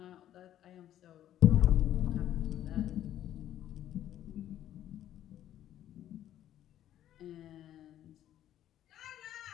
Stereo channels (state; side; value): quieter; right; 11.8 dB